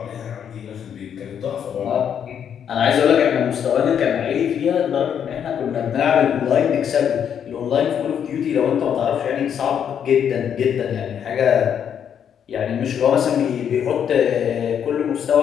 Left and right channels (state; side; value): quieter; right; 8.5 dB